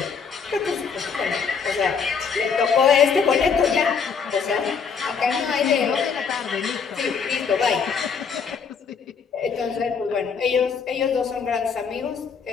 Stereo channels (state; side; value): quieter; right; 6.1 dB